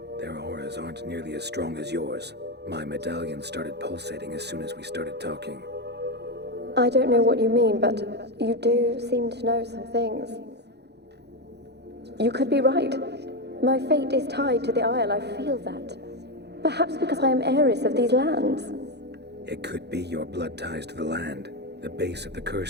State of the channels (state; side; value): late; left; 0.49 ms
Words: their auras aren't nearly as strong as yours. My medallion started pulsating as soon as we started talking. I don't know what you mean, but you do seem to know some things. You could be right. My fate is tied to the Isle, I feel that. Perhaps because I am heiress of these lands. It could be your blood ties to the land, the base of the